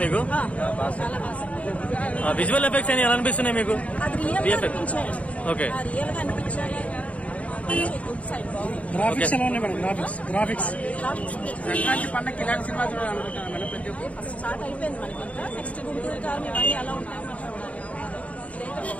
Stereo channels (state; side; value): late; right; 0.067 ms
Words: మీకు? చాలా బాగా. విజువల్ ఎఫెక్ట్స్ అని ఎలా అనిపిస్తున్నాయి మీకు? అది రియల్ గా అనిపించాడు. ఓకే, రియల్ గా అనిపించాలి. గ్రాఫిక్స్ ఎలా ఉన్నాయి మేడం? గ్రాఫిక్స్ సంక్రాంతి పండుగ ఇలాంటి సినిమా చూడాలనుకుంటున్నాను మేడం. ప్రతి ఒక్క ఫస్ట్ స్టార్ట్ అయిపోయింది మనకి. ఇంకా నెక్స్ట్ గుంటూరు కాలం ఇవన్నీ ఎలా ఉంటాయో మనం చూడాలి.